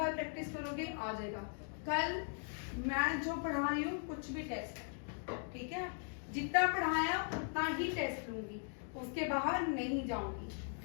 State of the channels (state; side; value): silent; right; 52 dB below the other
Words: प्रैक्टिस करोगे आ जाएगा। कल मैं जो पढ़ा रही हूँ कुछ भी टेस्ट है, ठीक है। जितना पढ़ाया उतना ही टेस्ट लूंगी, उसके बाहर नहीं जाऊंगी,